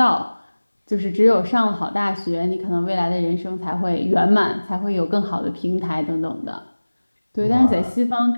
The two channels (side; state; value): both; inverted; correlation -1.00